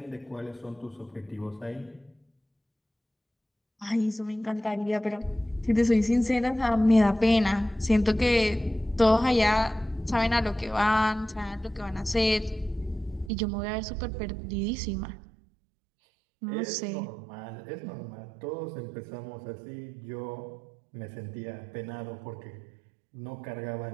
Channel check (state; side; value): drops out; left; at 13.3 s